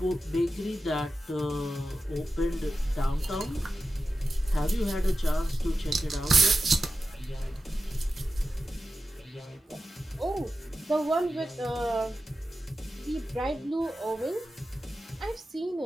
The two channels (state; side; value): normal; both; correlation 0.92